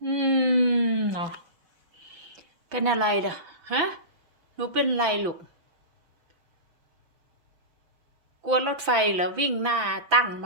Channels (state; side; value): late; left; 5.9 ms